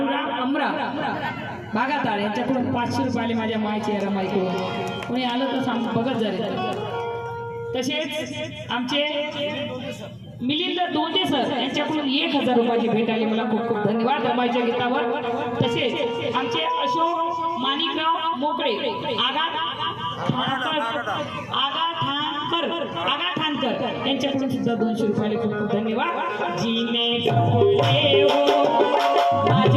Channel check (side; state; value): both; identical; correlation 1.00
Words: अमरा बागाताळ यांच्याकडून 500 रुपये माझ्या मायचे रमाईकडून कोणी आलं तर सांग बघत झाले। तसेच आमचे मिलिंद दोंदे सर यांच्याकडून 1000 रुपयाची भेट आली, मला खूप खूप धन्यवाद रमाईच्या गीतावर। तसेच आमचे अशोक माणिकराव मोकळे आगा ठाणकर यांच्याकडून सुद्धा 200 रुपये खूप खूप धन्यवाद। जीने जपले हो